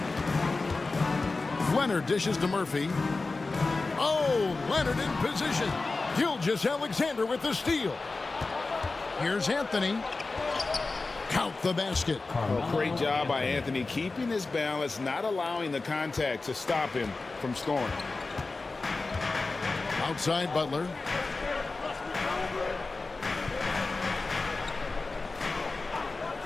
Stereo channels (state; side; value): quieter; right; 3.6 dB